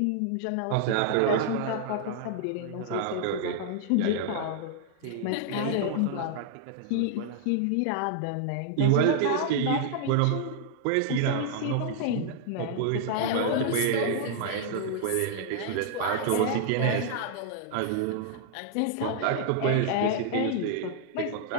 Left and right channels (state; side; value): different; both; correlation -0.01